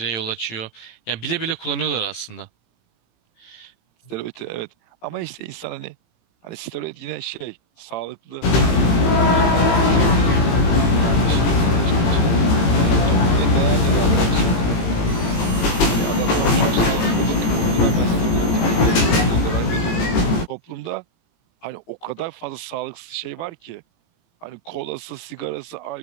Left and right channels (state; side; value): late; right; 18 ms